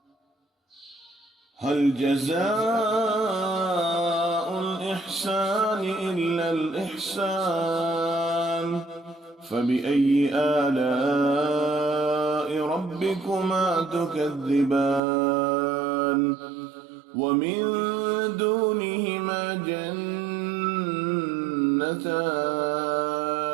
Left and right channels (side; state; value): left; drops out; at 15.0 s